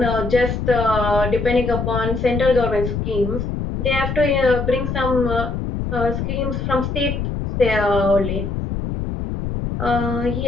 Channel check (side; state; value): left; noise; rumble, 3 dB below the sound